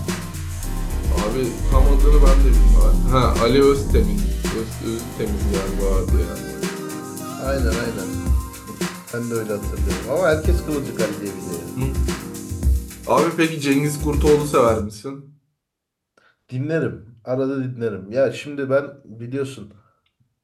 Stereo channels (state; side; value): identical; both; correlation 1.00